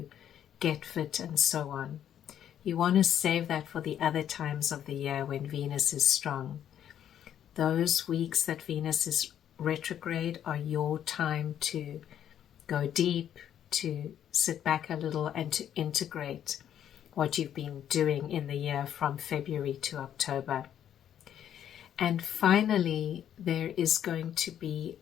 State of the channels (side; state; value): right; quieter; 10.0 dB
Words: get fit and so on. You want to save that for the other times of the year when Venus is strong. Those weeks that Venus is retrograde are your time to go deep, to sit back a little, and to integrate what you've been doing in the year from February to October. And finally, there is going to be